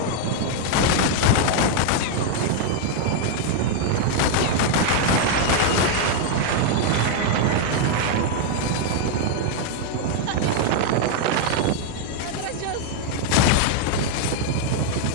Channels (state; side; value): different; both; correlation 0.00